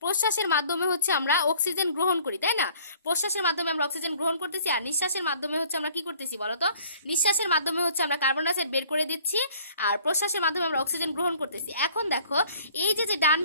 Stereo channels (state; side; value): inverted; both; correlation -0.55